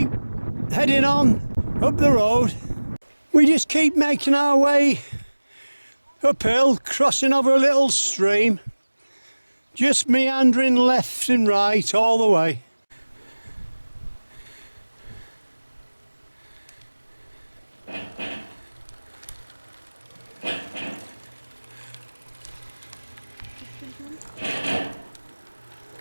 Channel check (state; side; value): inverted; both; correlation -1.00